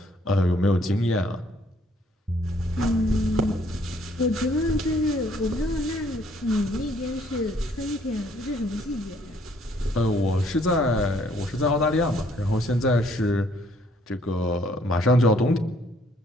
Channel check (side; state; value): both; normal; correlation 0.64